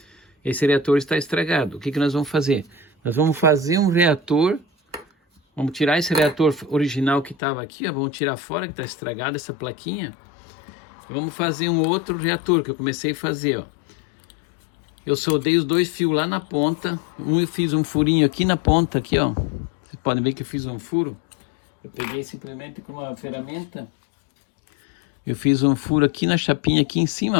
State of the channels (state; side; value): drops out; right; at 7.4 s